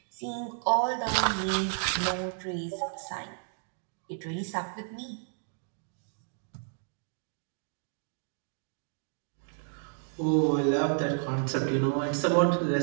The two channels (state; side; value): silent; left; 57 dB below the other